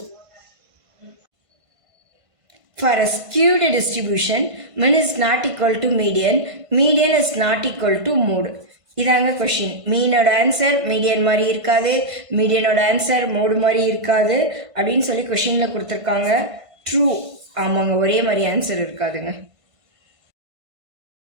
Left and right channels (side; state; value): left; late; 1.5 ms